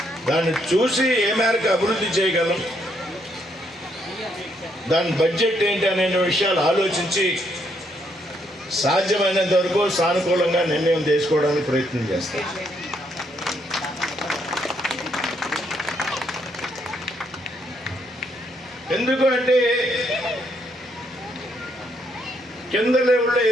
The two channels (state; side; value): normal; both; correlation 0.74